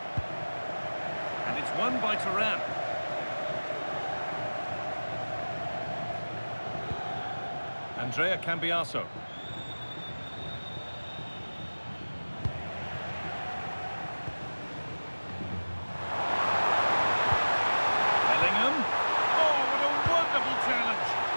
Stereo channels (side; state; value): both; inverted; correlation -1.00